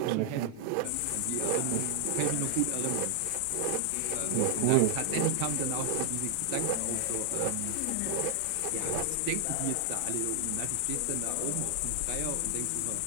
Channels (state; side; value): different; both; correlation 0.00